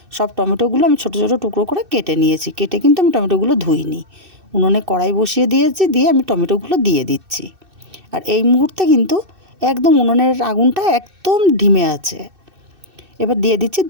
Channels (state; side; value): late; left; 2.6 ms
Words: সব টমেটোগুলো আমি ছোট ছোট টুকরো করে কেটে নিয়েছি। কেটে কিন্তু আমি টমেটোগুলো ধুইনি। উনুনে কড়াই বসিয়ে দিয়েছি, দিয়ে আমি টমেটোগুলো দিয়ে দিচ্ছি। আর এই মুহূর্তে কিন্তু একদম উনুনের আগুনটা একদম ধিমে আছে। এবার দিয়ে দিচ্ছি